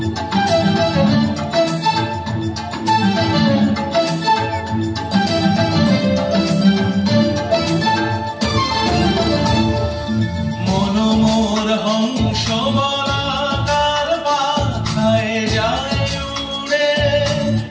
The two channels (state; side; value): identical; both; correlation 1.00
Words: মনোমর হংস বলাকার পাখায় যায় উড়ে